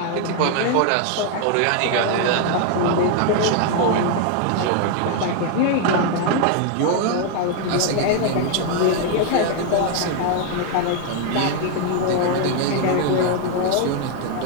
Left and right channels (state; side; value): different; both; correlation 0.00